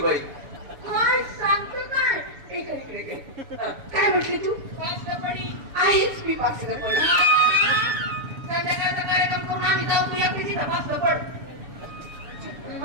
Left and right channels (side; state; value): left; late; 7.0 ms